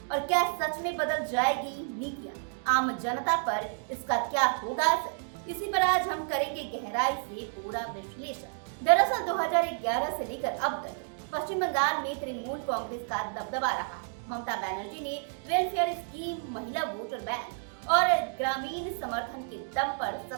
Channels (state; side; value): silent; left; 58 dB below the other